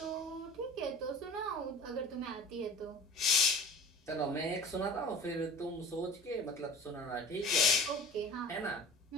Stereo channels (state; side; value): normal; both; correlation 0.40